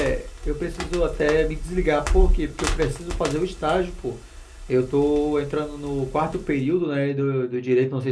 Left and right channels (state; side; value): identical; both; correlation 1.00